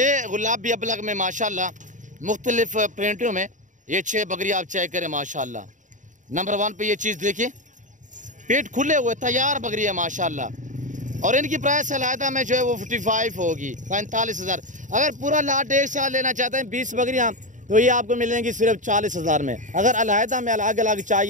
गुलाबी अबलग में माशाल्लाह मुख्तलिफ प्रिंटों में ये 6 बकरी आप चेक करें माशाल्लाह। नंबर 1 पे ये चीज़ देखिए, पेट खुले हुए तैयार बकरी है माशाल्लाह। और इनकी प्राइस अलहदा में जो है वो 55 होगी, 45,000। अगर पूरा लाट एक साथ लेना चाहते हैं 20 बकरियाँ, तो ये आपको मिलेंगी सिर्फ 40,000 में। अगर अलहदा में अलग अलग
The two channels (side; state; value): left; late; 0.36 ms